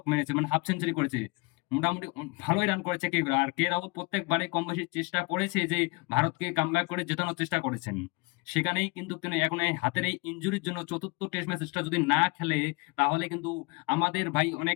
মেরেছে, মানে হাফ সেঞ্চুরি করেছে। মোটামুটি ভালোই রান করেছে কে, আর কে রাহুল প্রত্যেকবারে কম বেশি চেষ্টা করেছে যে ভারতকে কামব্যাক করে জেতানোর চেষ্টা করেছেন। সেখানেই কিন্তু তিনি এখন এই হাতের এই ইনজুরির জন্য চতুর্থ টেস্ট ম্যাচটা যদি না খেলে, তাহলে কিন্তু আমাদের ভাই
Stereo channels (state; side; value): quieter; right; 26.7 dB